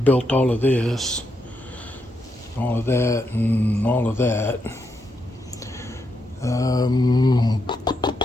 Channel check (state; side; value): normal; both; correlation 0.81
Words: all of this, all of that, and all of that.